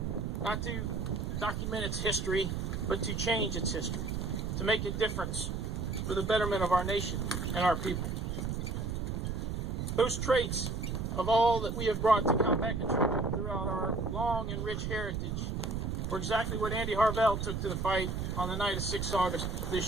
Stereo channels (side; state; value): right; noise; rumble, 2 dB below the sound